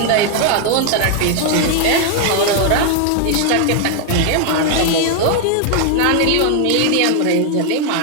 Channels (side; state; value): both; different; correlation 0.01